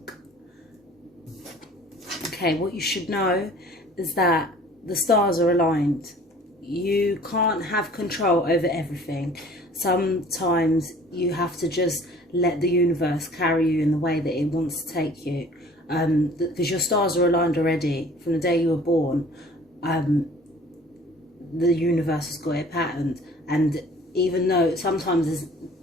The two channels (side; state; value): both; normal; correlation 0.50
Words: Okay, what you should know is that the stars are aligned. You can't have control over everything. Sometimes you have to just let the universe carry you in the way that it wants to take you. Because your stars are aligned already. From the day you were born, the universe has got it patterned. And even though sometimes